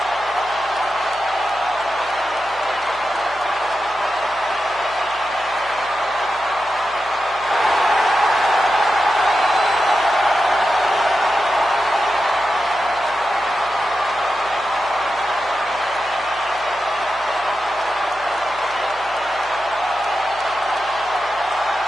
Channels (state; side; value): noise; left; hum, 24 dB below the sound